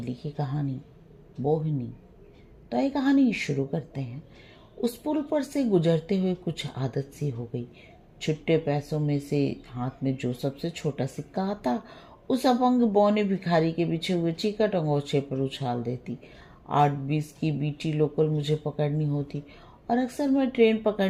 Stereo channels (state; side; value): identical; both; correlation 1.00